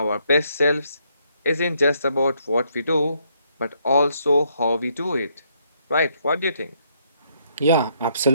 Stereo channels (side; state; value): both; inverted; correlation -0.72